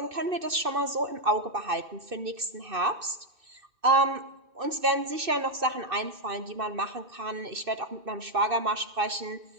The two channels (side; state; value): left; late; 2.6 ms